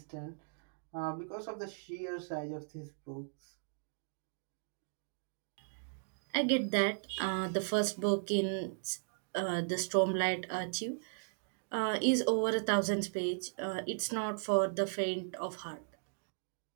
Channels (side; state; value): left; silent; digital silence